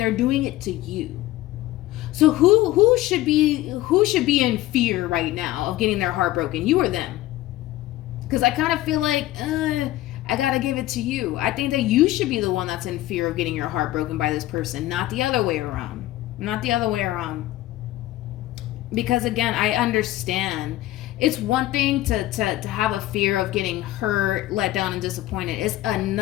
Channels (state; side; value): quieter; right; 16.0 dB